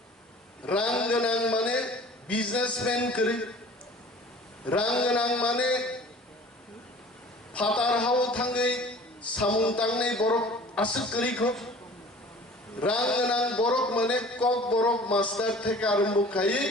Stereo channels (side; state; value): both; normal; correlation 0.46